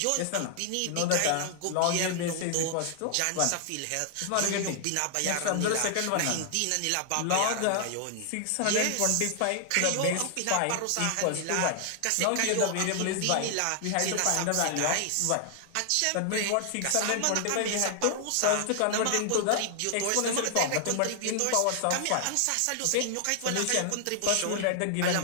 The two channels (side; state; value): both; different; correlation 0.00